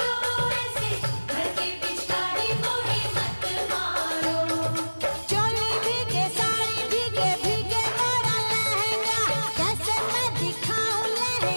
ऐसे भर के पिचकारी मोहे मत मारो। चोली भीगे साड़ी भीगे भीगे मोरा लहंगा, कैसे मैं दिखाऊं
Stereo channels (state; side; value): inverted; both; correlation -1.00